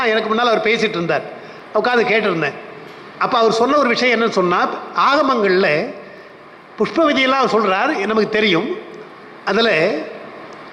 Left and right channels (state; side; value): identical; both; correlation 1.00